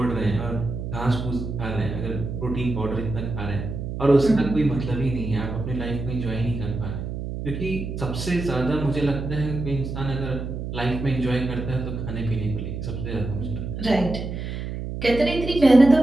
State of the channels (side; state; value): right; noise; hum, 6 dB below the sound